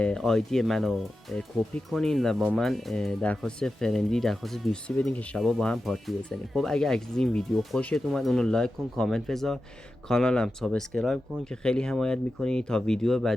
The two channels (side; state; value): both; normal; correlation 0.92